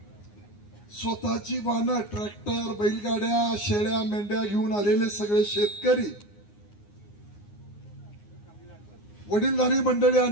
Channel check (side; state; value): right; late; 9.7 ms